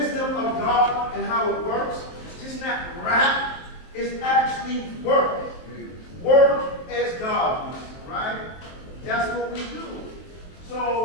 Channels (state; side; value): late; right; 23 ms